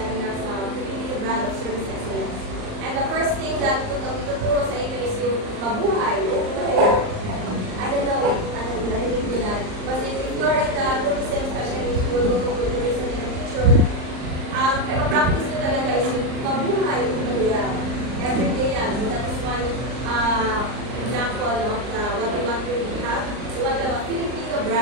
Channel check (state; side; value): late; left; 39 ms